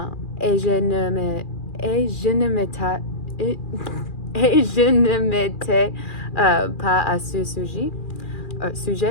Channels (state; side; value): late; right; 2.4 ms